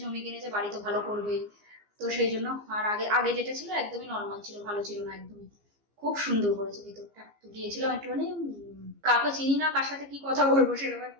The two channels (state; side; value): late; left; 15 ms